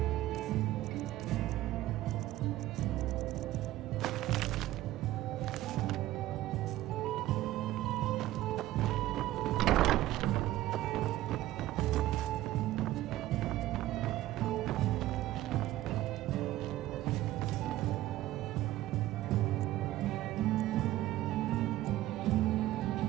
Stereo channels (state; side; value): quieter; left; 15.4 dB